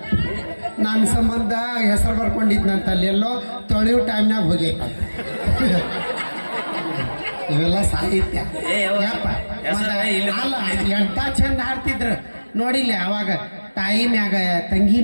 ನನ್ನ ಸಂಬಂಧ ಹೆಸರು ಬರ್ಕೊಂಡಿದ್ನಂತ ಅಲ್ಲಿ ಎಲ್ಲೋ ತೊಳೆಯೋ ಟೈಮ್ನಾಗ ಹೋಗೈತ ಇವೆಲ್ಲ ಸಾಹಿತ್ಯ ಏ, ಯಾವ- ಯಪ್ಪ. ಹೆಸರ ಇಲ್ಲಿ- ಅಲ್ಲ ಎಂತ ಚಂದ ಹಾಡ್ತಿದ್ರು ನೋಡಿಲ್ಲ ಅವಾಗ ತಾಯಿ ಮ್ಯಾಗ ತಂಗಿ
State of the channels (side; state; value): both; inverted; correlation -1.00